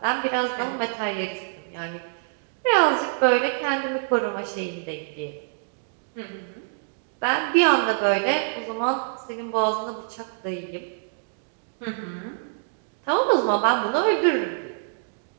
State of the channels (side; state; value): left; silent; digital silence